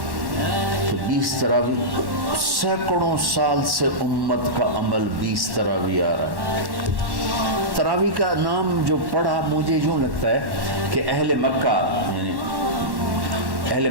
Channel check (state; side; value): late; left; 1.1 ms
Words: تو 20 تراویح، سینکڑوں سال سے امت کا عمل 20 تراویح آ رہا ہے. تراویح کا نام جو پڑھا مجھے یوں لگتا ہے کہ اہل مکہ، یعنی اہل